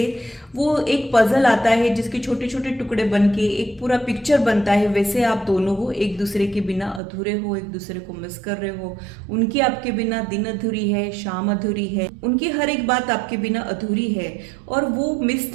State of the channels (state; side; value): drops out; left; at 7.0 s